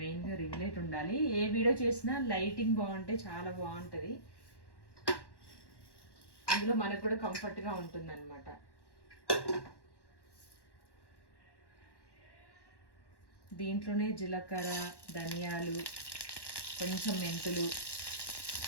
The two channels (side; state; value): right; late; 1.1 ms